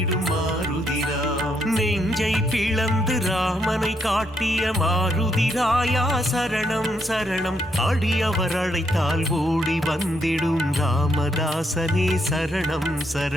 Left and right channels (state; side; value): normal; both; correlation 0.76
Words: மாருதிராம். நெஞ்சை பிளந்து ராமனை காட்டிய மாருதிராயா சரணம் சரணம், அடியவர் அழைத்தால் ஓடி வந்திடும் ராமதாசனே சரணம்